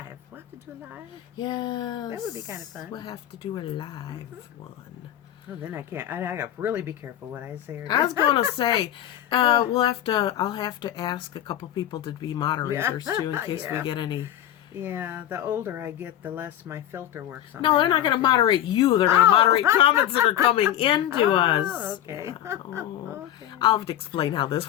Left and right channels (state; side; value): quieter; right; 11.8 dB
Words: We'll have to do a live. Yes. That would be kind of fun. We'll have to do a live one. Oh, then I can't. I got to really be careful what I say. I was going to say, I'll have to ask a couple people to be moderators too, in case we get any. Yeah, the older I get, the less my filter works on. No, they're not going to moderate you. They're going to moderate comments that are coming into us. Okay. Okay. I'll have to explain how